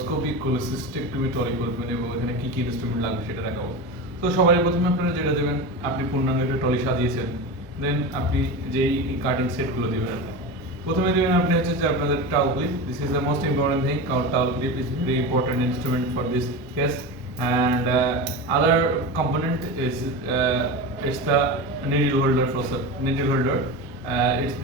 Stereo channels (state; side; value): normal; both; correlation 0.24